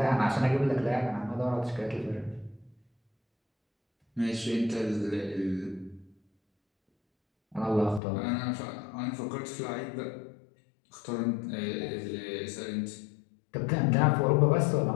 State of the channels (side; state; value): right; drops out; at 8.0 s